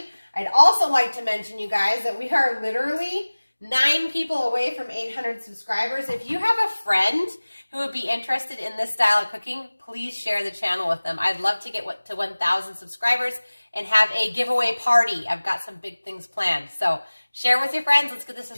I'd also like to mention, you guys, that we are literally 9 people away from 800 subscribers. If you have a friend who would be interested in this style of cooking, please share the channel with them. I'd love to get to 1,000 subscribers and have a giveaway party. I've got some big things planned. So share with your friends. Let's get the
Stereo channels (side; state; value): both; inverted; correlation -1.00